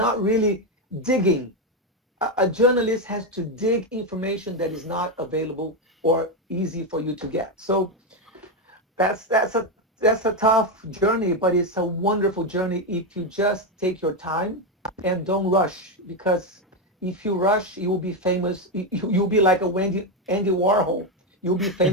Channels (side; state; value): both; normal; correlation 0.07